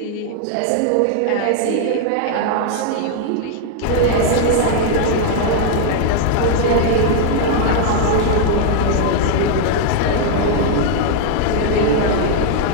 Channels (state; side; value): different; both; correlation 0.00